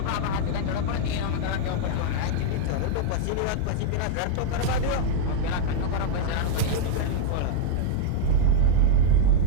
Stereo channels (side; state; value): both; different; correlation -0.01